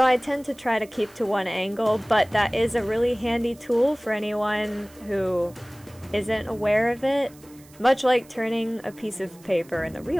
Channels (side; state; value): right; noise; hiss, 25 dB below the sound